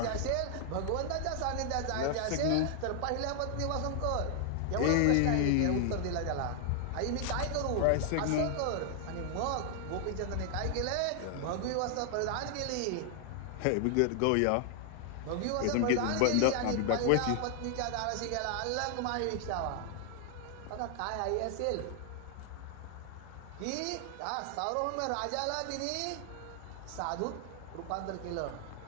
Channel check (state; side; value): different; both; correlation 0.00